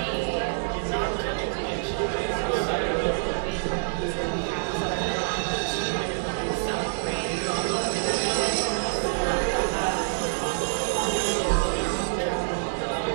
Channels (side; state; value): left; silent; digital silence